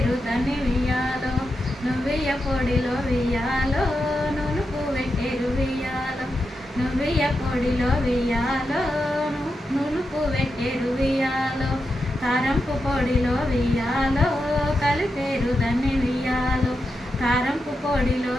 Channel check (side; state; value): both; normal; correlation 0.87